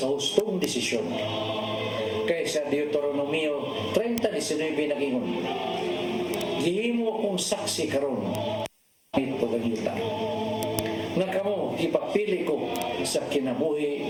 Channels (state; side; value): identical; both; correlation 1.00